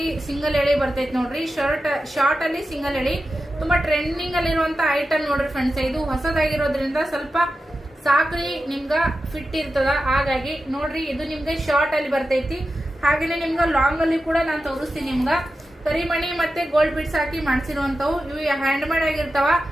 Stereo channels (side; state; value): both; normal; correlation 0.92